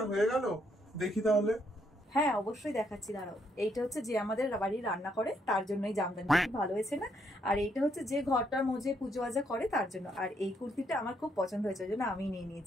হয়ে গেল? দেখি তাহলে। হ্যাঁ অবশ্যই দেখাচ্ছি, দাঁড়াও। এইটা হচ্ছে যে আমাদের বাড়ি রান্না করে তার জন্য এই জামদানি, খুব ভালো হয়েছে না? আর এইটা হচ্ছে যে ঘরটার মধ্যে পুজো আজা করে তার জন্য। আর এই কুর্তিটা আমার খুব পছন্দ হয়েছে, ওই জন্য আমি নিয়ে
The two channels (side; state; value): both; normal; correlation 0.74